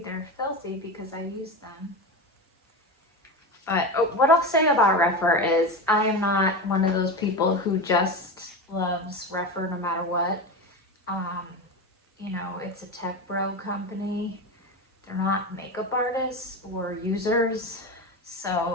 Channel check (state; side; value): normal; both; correlation 0.22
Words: they're filthy because I use them. But what I'll say about Rephr is I am not one of those people who just loves Rephr no matter what. You know, it's a tech bro company. They're not makeup artists or users.